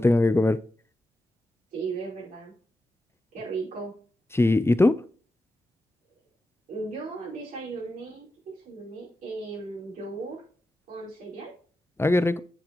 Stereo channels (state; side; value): normal; both; correlation 0.90